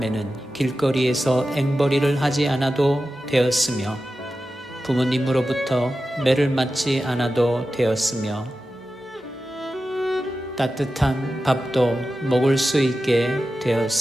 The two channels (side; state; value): both; normal; correlation 0.93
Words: 길거리에서 앵벌이를 하지 않아도 되었으며 부모님으로부터 매를 맞지 않아도 되었으며 따뜻한 밥도 먹을 수 있게